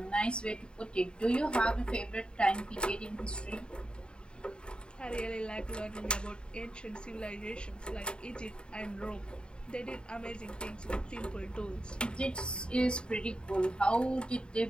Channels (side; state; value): right; late; 0.051 ms